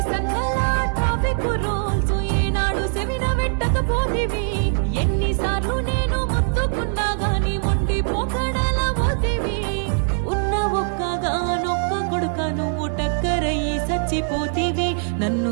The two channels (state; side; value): silent; left; digital silence